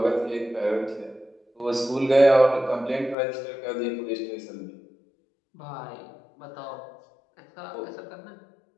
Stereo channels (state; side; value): drops out; right; at 3.2 s